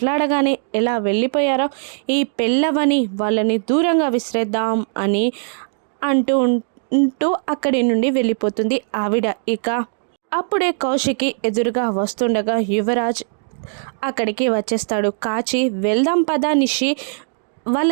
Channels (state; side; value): silent; left; 66 dB below the other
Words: ఎలా వెళ్ళిపోయారో, ఈ పెళ్ళవని వాళ్ళని దూరంగా విసిరేద్దాం అని అంటూ అక్కడి నుండి వెళ్ళిపోతుంది ఆవిడ. ఇక అప్పుడే కౌశికి ఎదురుగా వస్తుండగా యువరాజ్ అక్కడికి వచ్చేస్తాడు. కాచి, వెళ్దాం పదా నిషి,